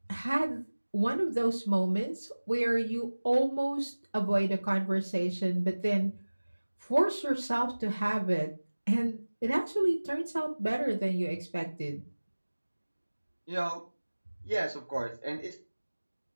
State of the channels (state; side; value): inverted; both; correlation -1.00